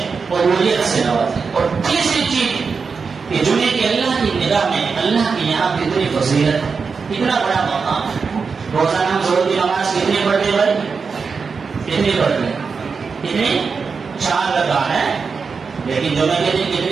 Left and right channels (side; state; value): left; quieter; 5.2 dB